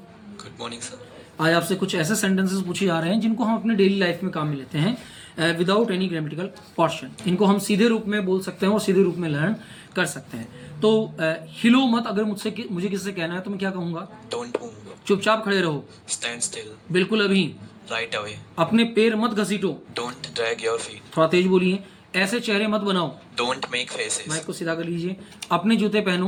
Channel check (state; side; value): identical; both; correlation 1.00